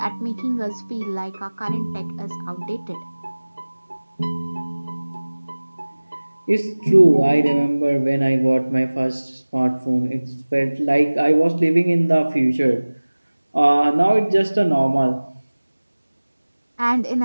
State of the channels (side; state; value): both; inverted; correlation -1.00